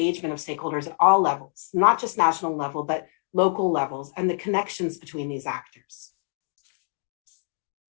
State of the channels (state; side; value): silent; right; digital silence